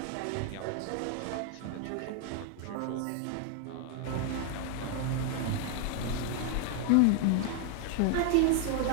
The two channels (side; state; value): both; different; correlation 0.01